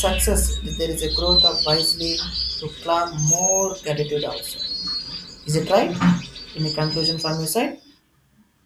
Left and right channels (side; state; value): both; identical; correlation 1.00